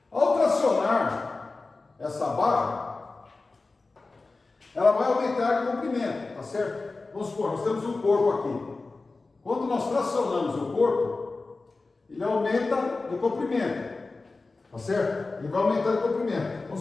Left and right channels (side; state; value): right; quieter; 3.6 dB